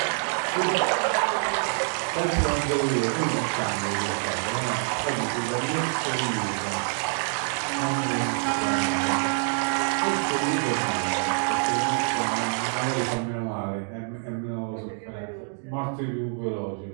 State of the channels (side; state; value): left; silent; 61 dB below the other